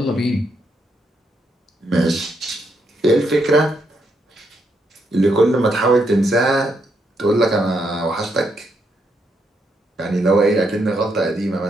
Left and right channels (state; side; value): normal; both; correlation 0.78